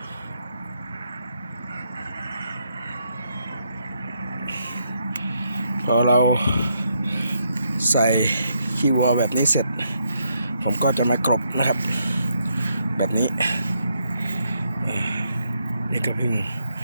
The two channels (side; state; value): both; inverted; correlation -0.77